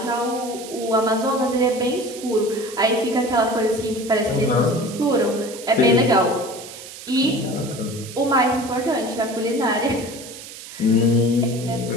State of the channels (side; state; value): right; noise; hiss, 14 dB below the sound